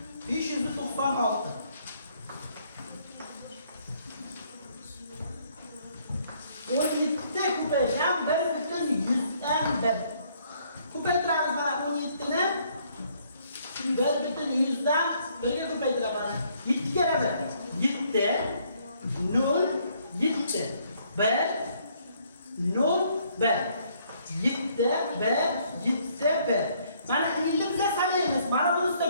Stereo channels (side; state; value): both; inverted; correlation -0.67